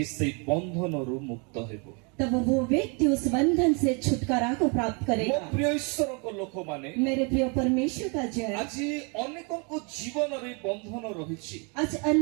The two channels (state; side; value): quieter; left; 33.7 dB